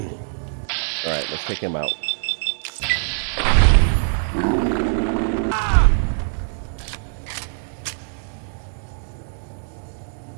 Alright, let's take him out.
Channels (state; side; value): silent; left; digital silence